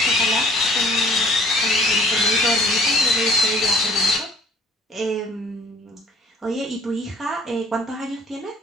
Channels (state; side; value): normal; both; correlation 0.55